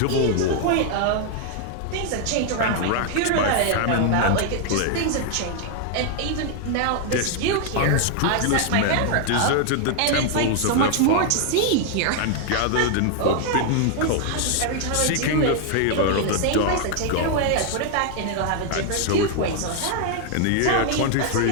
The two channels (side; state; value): both; different; correlation 0.00